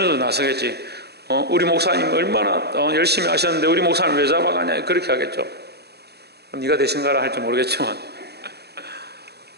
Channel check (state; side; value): late; left; 0.48 ms